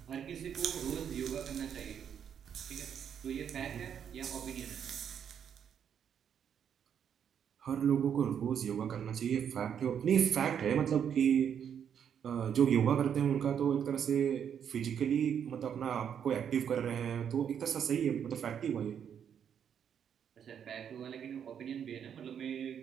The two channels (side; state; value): left; quieter; 8.3 dB